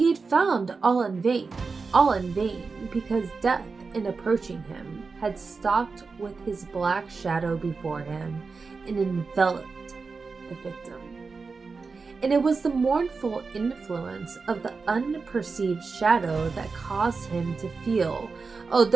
had found all in vain, because death, in approaching him, had stalked with his black shadow before him and enveloped the victim. And it was the mournful influence of the unperceived shadow that caused him to feel,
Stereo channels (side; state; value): left; quieter; 4.5 dB